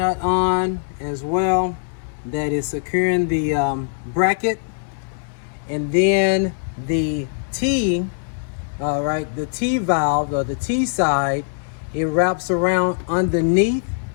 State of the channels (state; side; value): silent; right; digital silence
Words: on as well that is securing the bracket, and then the T, all right, the T valve, or the T side, it wraps around underneath